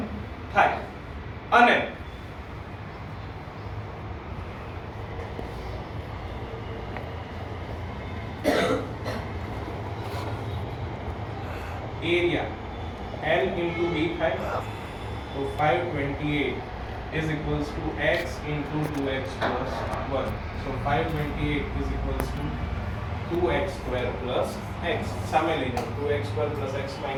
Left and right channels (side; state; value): both; identical; correlation 1.00